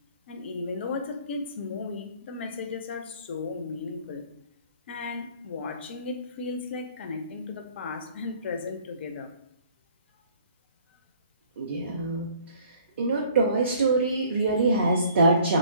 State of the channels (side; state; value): both; inverted; correlation -0.56